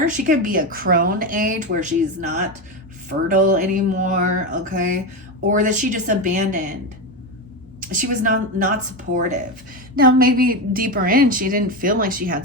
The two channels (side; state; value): both; normal; correlation 0.15